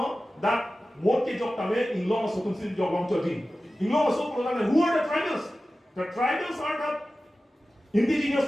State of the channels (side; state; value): both; normal; correlation 0.95